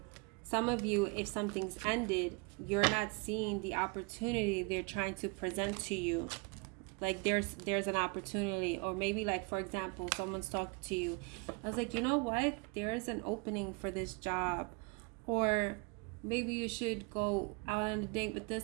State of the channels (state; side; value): quieter; left; 32.2 dB